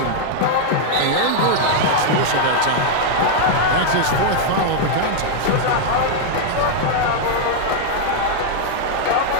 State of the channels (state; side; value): different; both; correlation -0.01